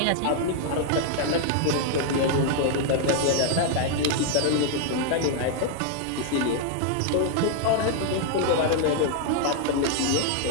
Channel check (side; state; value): both; different; correlation 0.00